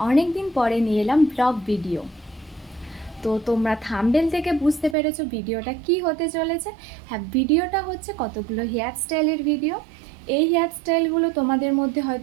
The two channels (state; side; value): drops out; left; at 5.0 s